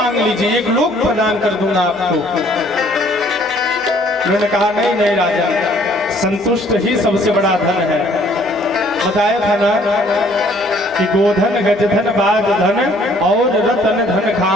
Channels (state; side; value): noise; right; hum, 29 dB below the sound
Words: लीजिए, एक लोक प्रदान कर दूंगा आपको। मैंने कहा नहीं नहीं राजा, संतुष्ट ही सबसे बड़ा धन है। बताया था ना कि गोधन गजधन बाज धन और रतन धन